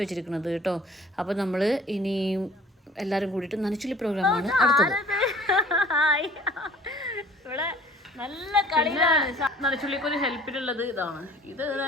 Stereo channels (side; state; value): both; normal; correlation 0.50